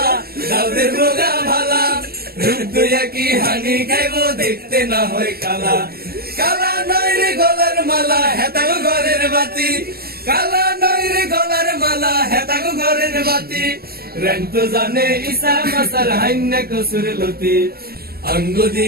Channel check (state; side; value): late; left; 0.45 ms